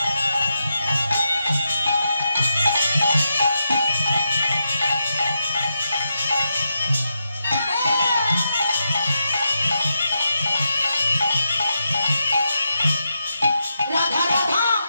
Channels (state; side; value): inverted; both; correlation -0.85